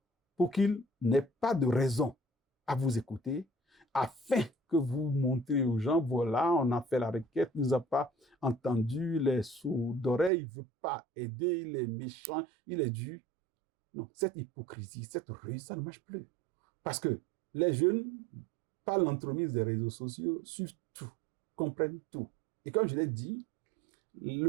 pour qu'il n'ait pas de raison à vous écouter, afin que vous montrez aux gens, voilà, on a fait la requête, il ne nous a pas entendu, les sourds d'oreille, il ne veut pas aider, il est méchant, il est dur. Non, cette hypocrisie, cette ruse, ça ne marche plus. Parce que les jeunes, par l'entremise des réseaux sociaux, suivent tout, comprennent tout. Et comme je l'ai dit,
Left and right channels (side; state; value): left; drops out; at 10.3 s